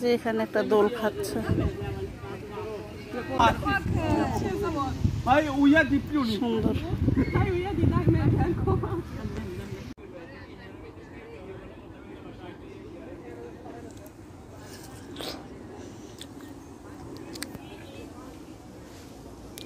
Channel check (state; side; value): identical; both; correlation 1.00